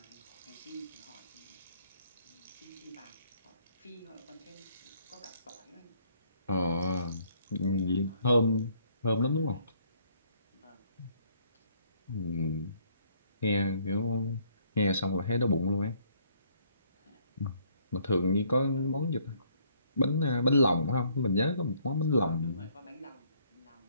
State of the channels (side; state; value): both; inverted; correlation -0.64